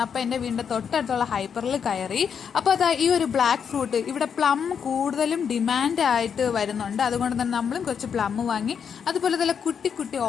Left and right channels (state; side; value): quieter; right; 7.2 dB